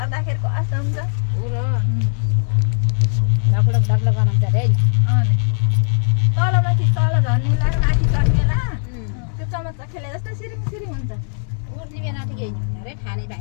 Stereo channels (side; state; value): right; silent; 66 dB below the other